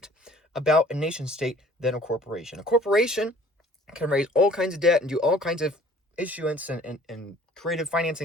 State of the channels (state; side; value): normal; both; correlation 0.53